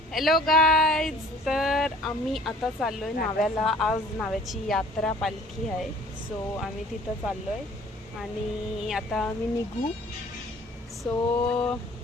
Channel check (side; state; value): both; normal; correlation 0.52